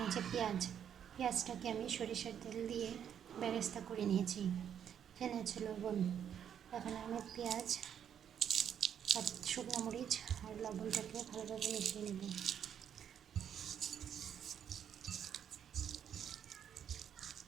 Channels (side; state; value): left; quieter; 8.9 dB